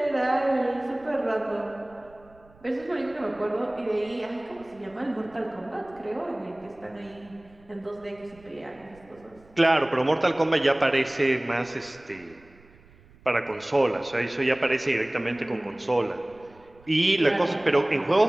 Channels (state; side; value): noise; right; rumble, 27 dB below the sound